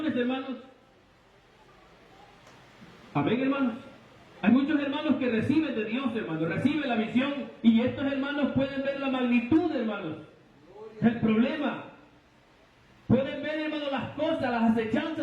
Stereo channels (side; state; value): both; identical; correlation 1.00